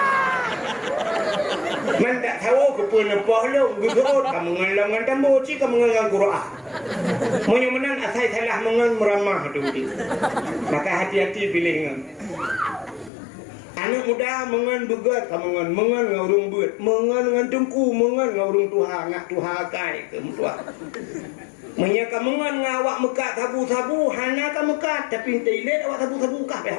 Man tak tahu ke pua ipoh lu. Gurut kamu ngelangan tambo ci kamu ngelangan Quran. Menyemenan asai salah mengen meramah tu. Maka hati-hati pilih ngan. Anak muda mengan begat kamu mengan ngaurung beut mengan ngan tengku mengan ngaurung tuha ngak tuha kai ke mutua menyaka mengan ngawak mekat sabu-sabu hana ka mekat tapi teilet awak sabu-sabu kah peh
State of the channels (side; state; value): right; drops out; at 13.1 s